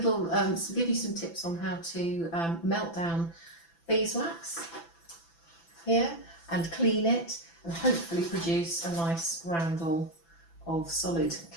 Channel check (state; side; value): late; right; 6.0 ms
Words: give you some tips on how to melt down beeswax here and clean it and hopefully produce a nice roundel of solid